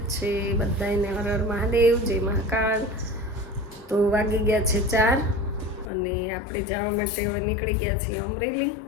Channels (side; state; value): right; drops out; at 5.9 s